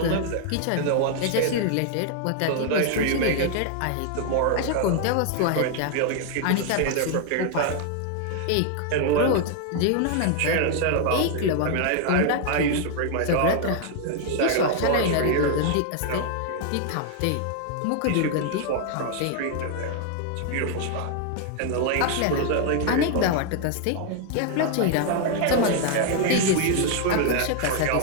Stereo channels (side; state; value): both; different; correlation 0.00